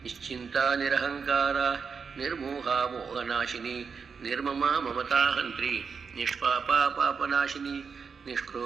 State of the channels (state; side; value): quieter; left; 5.7 dB